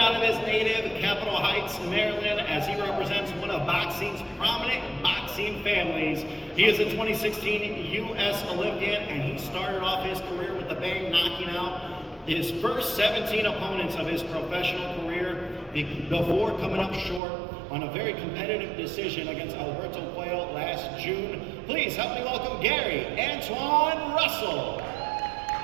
of his native Capitol Heights, Maryland, as he represents one of boxing's prominent boxing families. He is a 2016 U.S. Olympian, and he started off his career with a bang, knocking out his first 17 opponents of his professional career before coming up short on a very competitive decision against Alberto Puello last June. Please help me welcome Gary Antoine Russell.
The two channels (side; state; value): left; drops out; at 17.2 s